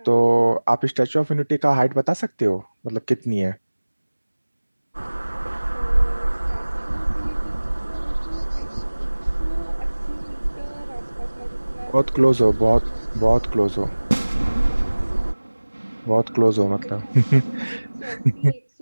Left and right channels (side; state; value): both; inverted; correlation -1.00